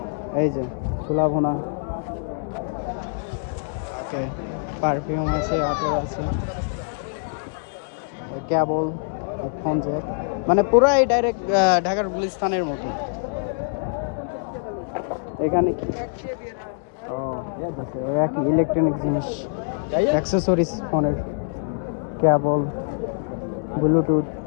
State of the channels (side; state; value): right; silent; 62 dB below the other